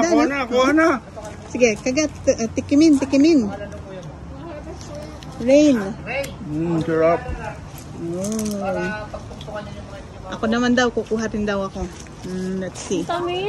no? Kuha na. Sige, kagat. Tikimin. Rain. Sarap. Oh. Ako naman daw, kukuha rin daw ako. Let's see.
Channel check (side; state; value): both; identical; correlation 1.00